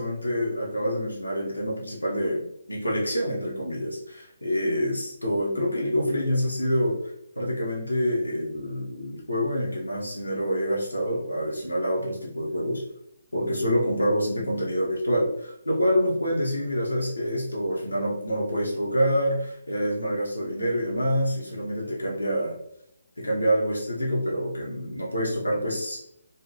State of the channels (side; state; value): both; inverted; correlation -0.85